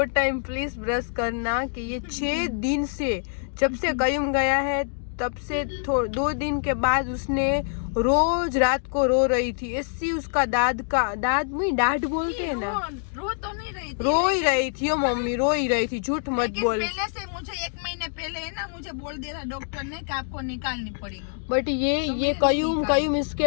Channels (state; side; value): silent; right; digital silence